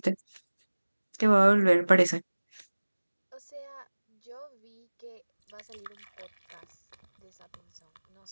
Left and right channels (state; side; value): inverted; both; correlation -1.00